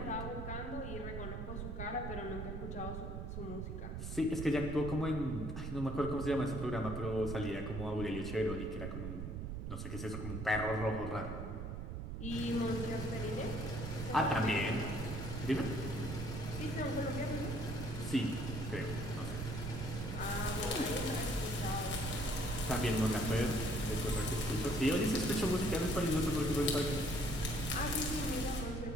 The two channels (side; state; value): right; noise; rumble, 5 dB below the sound